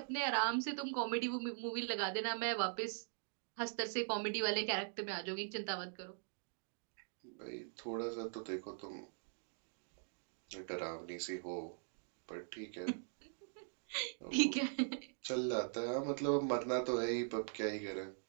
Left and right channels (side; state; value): left; silent; digital silence